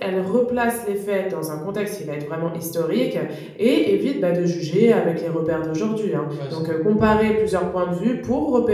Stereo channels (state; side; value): identical; both; correlation 1.00